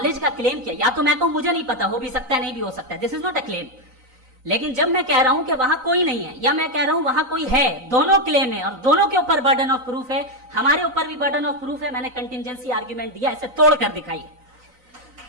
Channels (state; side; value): late; left; 3.9 ms